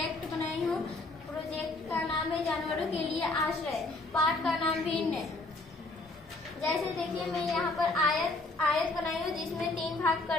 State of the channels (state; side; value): quieter; right; 3.1 dB